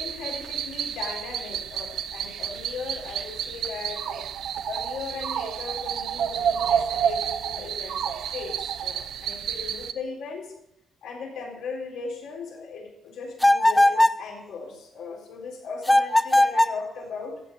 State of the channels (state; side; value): normal; both; correlation 0.86